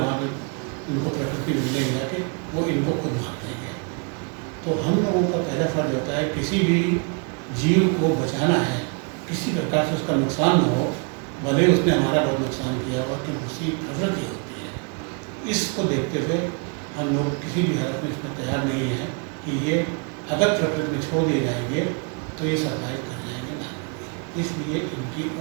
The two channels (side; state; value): left; quieter; 35.4 dB